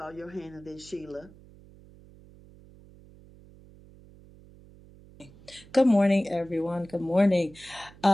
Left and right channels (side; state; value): right; noise; hum, 23 dB below the sound